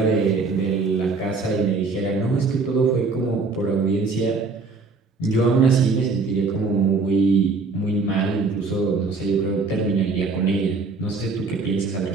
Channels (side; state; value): left; quieter; 4.1 dB